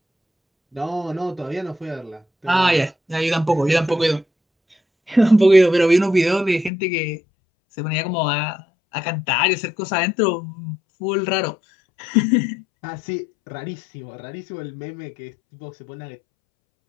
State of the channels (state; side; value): drops out; right; at 6.7 s